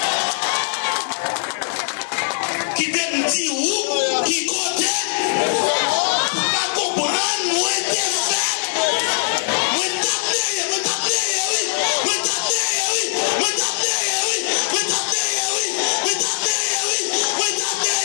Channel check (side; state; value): right; silent; digital silence